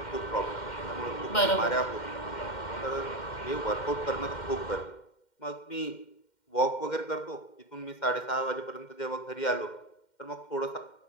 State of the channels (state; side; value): late; right; 2.1 ms